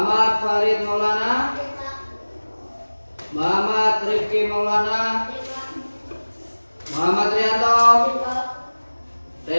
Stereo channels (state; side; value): inverted; both; correlation -1.00